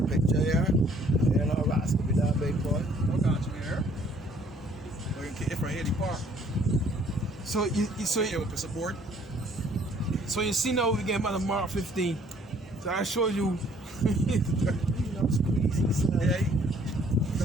picture here. You know, Ross could be that big boy. What got you here? We're going to get from here to park. So you Here with the support. so you see now we get about March 15. So I showed you. You know, squeeze. Yeah.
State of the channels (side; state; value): both; normal; correlation 0.60